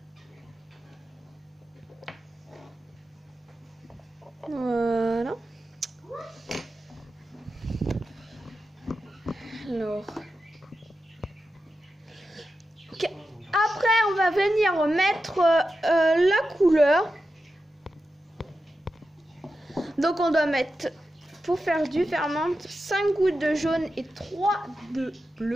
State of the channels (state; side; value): normal; both; correlation 0.91